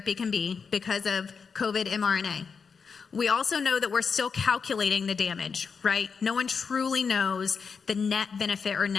can be because of COVID mRNA. We also know that we're still calculating the damage, right? No one truly knows the net benefit or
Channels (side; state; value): right; quieter; 5.6 dB